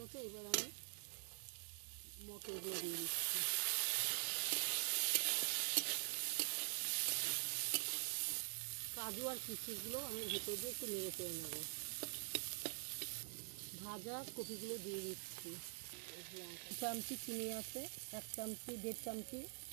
এবার আমি মটরগুলো দিয়ে দিচ্ছি। কাজু আর কিশমিশগুলো আমি ভেতর দিয়ে একটু নেড়ে চেড়ে নেব। ভাজা কপিগুলো দিয়ে দিচ্ছি। 1 চামচি চিনি আছে, 1 চামচি 1.5 চামচি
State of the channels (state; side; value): silent; left; digital silence